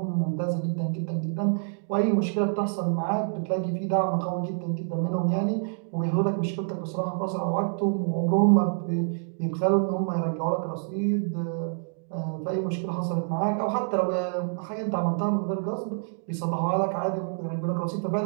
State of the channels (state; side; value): silent; left; digital silence